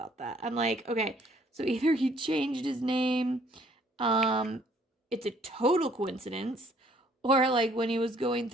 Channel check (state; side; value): normal; both; correlation 0.62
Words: that. I'm like, okay, so either he changed his name, it's a total coincidence, or like when he was going